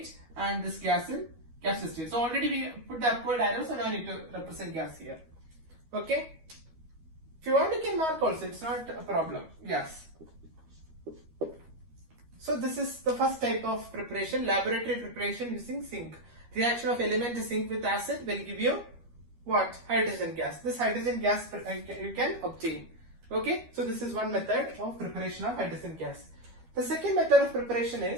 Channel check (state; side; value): late; left; 12 ms